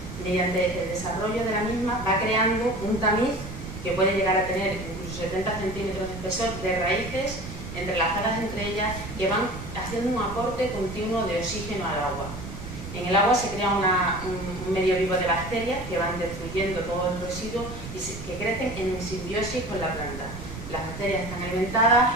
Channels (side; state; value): right; noise; rumble, 10 dB below the sound